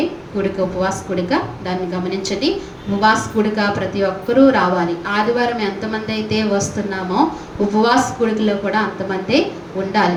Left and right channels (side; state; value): both; identical; correlation 1.00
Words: కూడిక, ఉపవాస కూడిక. దాన్ని గమనించండి. ఉపవాస కూడిక ప్రతి ఒక్కరూ రావాలి. ఆదివారం ఎంతమంది అయితే వస్తున్నామో ఉపవాస కూడికలో కూడా అంతమంది ఉండాలి.